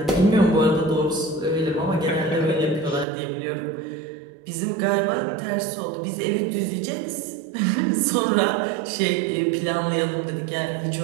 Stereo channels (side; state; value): left; drops out; at 3.1 s